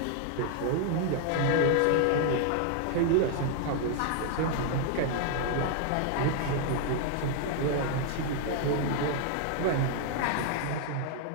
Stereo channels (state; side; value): different; both; correlation 0.00